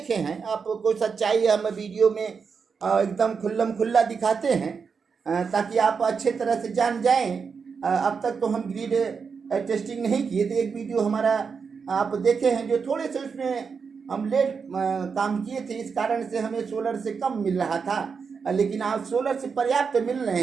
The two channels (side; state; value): left; quieter; 5.7 dB